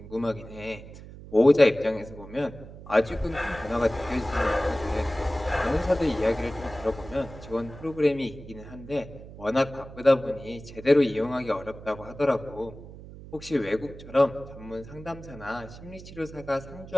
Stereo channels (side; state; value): right; noise; hum, 15 dB below the sound